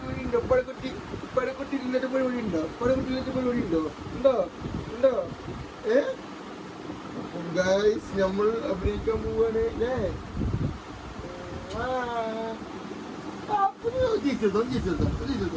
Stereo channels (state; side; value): identical; both; correlation 1.00